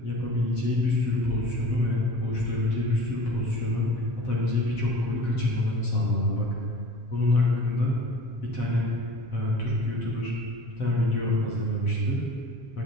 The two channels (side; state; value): right; late; 7.6 ms